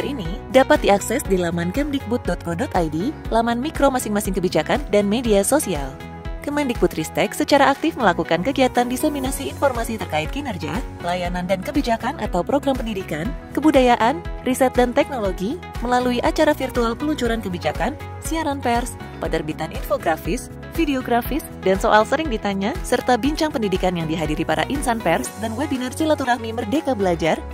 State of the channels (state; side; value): identical; both; correlation 1.00